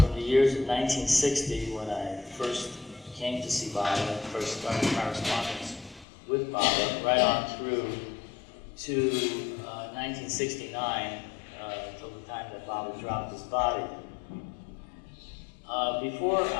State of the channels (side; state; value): right; drops out; at 6.1 s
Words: the years of 1960 when I first came to see Baba and first started correspondence with Baba, right on through to 1969, till the time that Baba dropped his body. Before